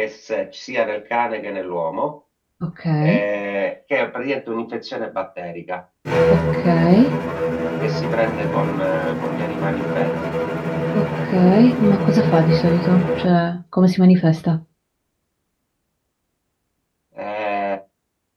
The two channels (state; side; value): identical; both; correlation 1.00